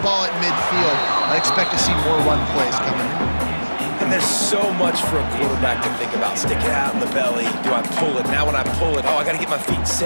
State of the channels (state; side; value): inverted; both; correlation -1.00